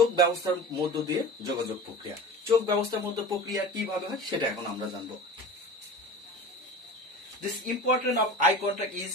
ব্যবস্থার মধ্য দিয়ে যোগাযোগ প্রক্রিয়া। চোখ ব্যবস্থার মধ্যে প্রক্রিয়া কিভাবে হয় সেটা এখন আমরা জানবো। This importance of eye contact is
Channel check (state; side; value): normal; both; correlation 0.35